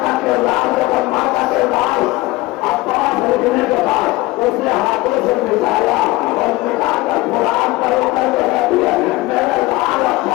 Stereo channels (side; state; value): right; quieter; 20.0 dB